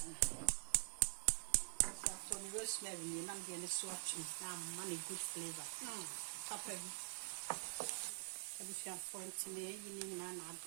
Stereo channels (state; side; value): silent; left; digital silence